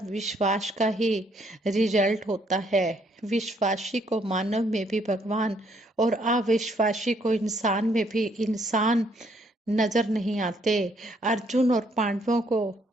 विश्वास का ही रिजल्ट होता है। विश्वासी को मानव में भी भगवान और अविश्वासी को इंसान में भी इंसान नजर नहीं आते। अर्जुन और पांडवों को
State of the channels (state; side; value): normal; both; correlation 0.69